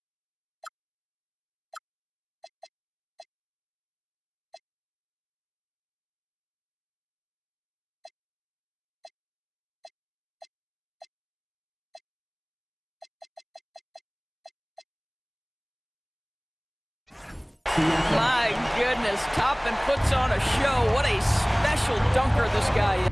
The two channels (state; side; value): identical; both; correlation 1.00